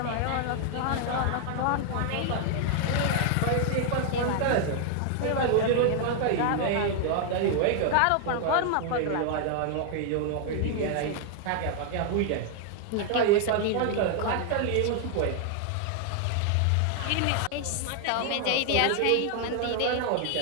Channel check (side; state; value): both; different; correlation 0.00